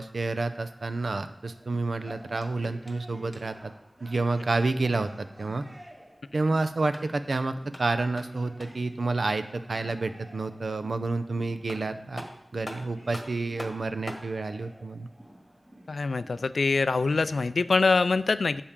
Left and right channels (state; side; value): normal; both; correlation 0.93